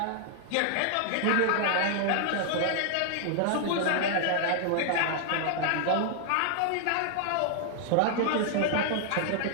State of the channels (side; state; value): both; different; correlation -0.01